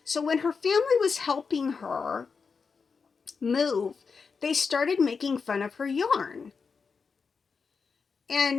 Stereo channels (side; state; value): right; quieter; 5.3 dB